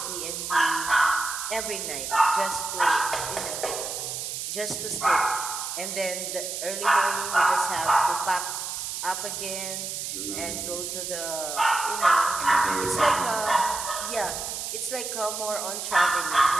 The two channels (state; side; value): noise; right; hiss, 5 dB below the sound